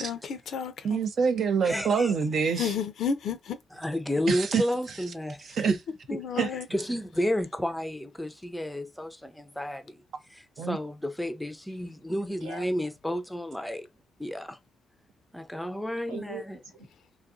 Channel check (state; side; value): normal; both; correlation 0.80